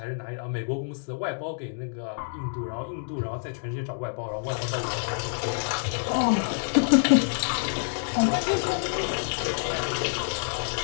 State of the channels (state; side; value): silent; right; digital silence